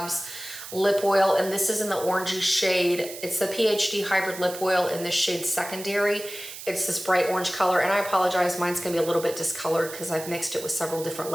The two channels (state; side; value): noise; right; hiss, 12 dB below the sound